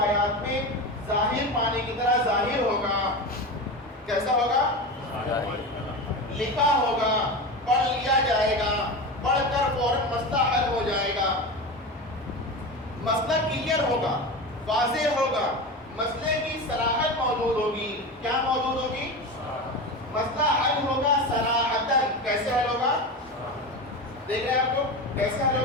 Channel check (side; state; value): both; normal; correlation 0.24